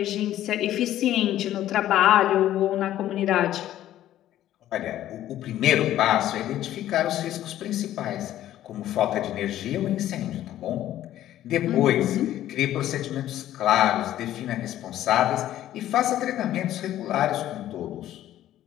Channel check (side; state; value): right; quieter; 12.9 dB